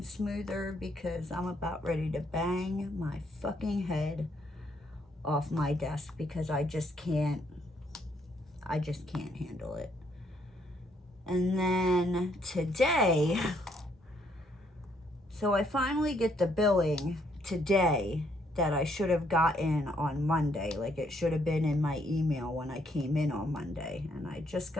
smoother, because I'm about ready to bang my fucking head off my desk because I just can't handle it. And then today, so I finally get the billing today that I should have gotten on Monday. Like, it should have been in my email when I came in on Monday, and I just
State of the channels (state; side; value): normal; both; correlation 0.70